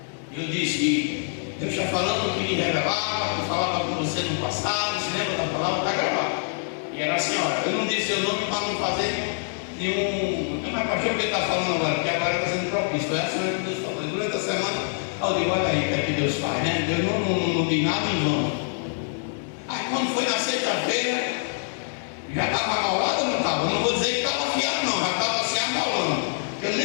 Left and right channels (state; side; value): silent; right; digital silence